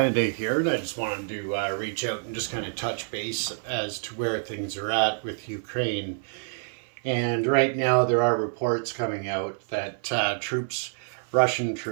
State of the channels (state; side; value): silent; left; 56 dB below the other